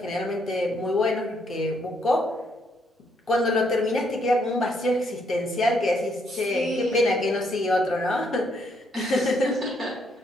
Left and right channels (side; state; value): both; normal; correlation 0.72